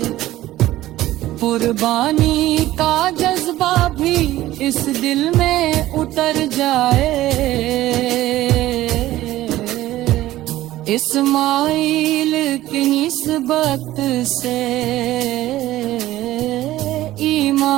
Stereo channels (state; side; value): quieter; left; 15.4 dB